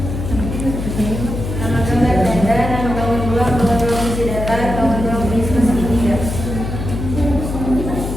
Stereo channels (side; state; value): left; noise; hum, 5 dB below the sound